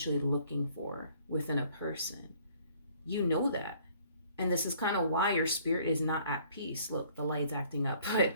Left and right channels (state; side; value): inverted; both; correlation -0.59